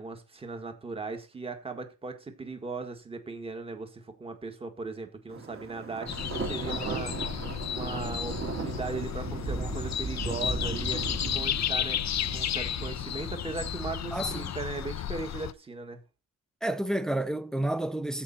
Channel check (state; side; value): normal; both; correlation 0.46